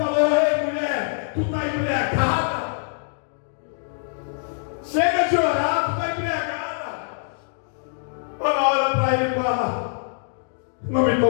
ei, mulher, tu está embriagada? Chega de orar, tu está embriagada. Ela olha para ele e fala: não me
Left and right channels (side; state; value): right; silent; digital silence